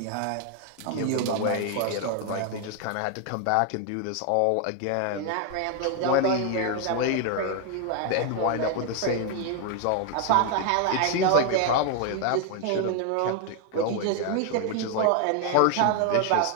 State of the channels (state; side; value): different; both; correlation 0.01